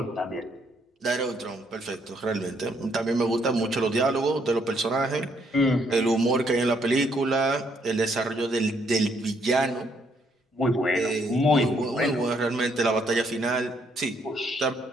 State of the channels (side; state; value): both; normal; correlation 0.70